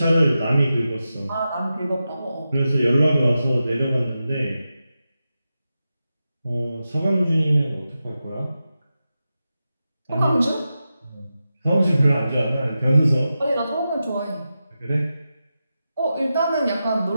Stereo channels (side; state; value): both; inverted; correlation -0.91